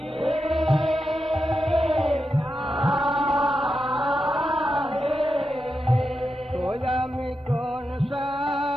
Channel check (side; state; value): both; normal; correlation 0.88